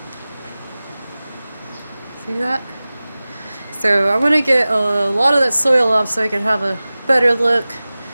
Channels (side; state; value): both; inverted; correlation -0.97